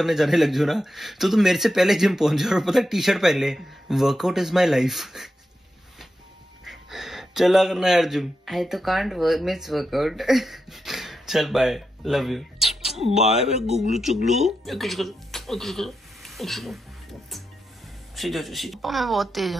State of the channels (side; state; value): both; normal; correlation 0.87